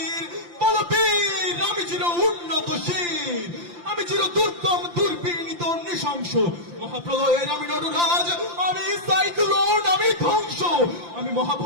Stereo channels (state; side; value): late; left; 5.8 ms